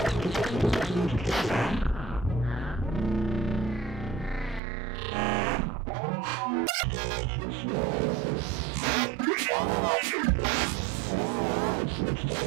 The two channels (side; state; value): left; drops out; at 4.6 s